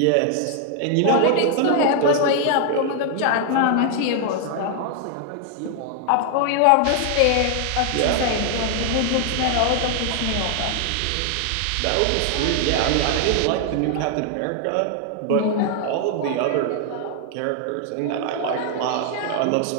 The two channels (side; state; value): both; different; correlation 0.00